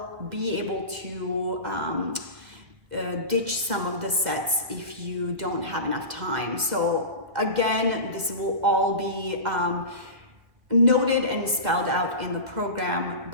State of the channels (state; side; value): late; left; 1.9 ms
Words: be able to ditch some of the sets if you don't have enough time. So again, this will all be noted and spelled out in the program,